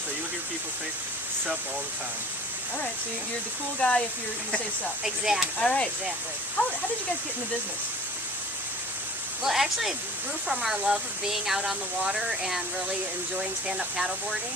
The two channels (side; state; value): both; normal; correlation 0.43